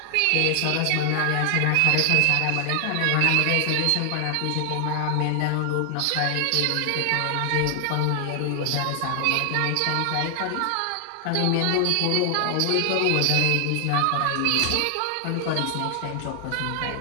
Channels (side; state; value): both; different; correlation 0.00